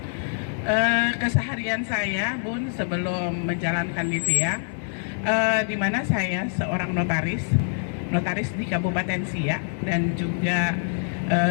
Keseharian saya, Bun, sebelum menjalankan Livia, di mana saya seorang notaris di Kabupaten Siak, dan juga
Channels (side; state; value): right; silent; digital silence